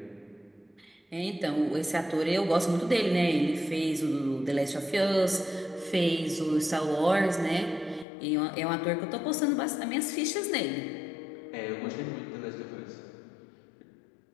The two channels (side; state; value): right; drops out; at 8.1 s